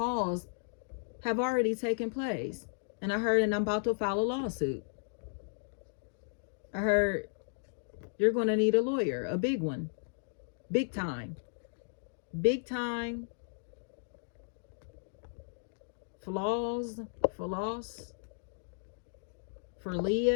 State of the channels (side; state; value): right; silent; digital silence